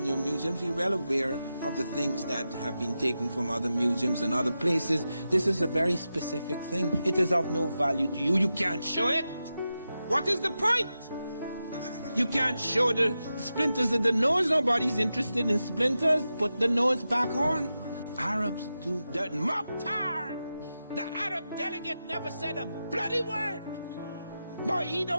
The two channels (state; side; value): inverted; both; correlation -0.90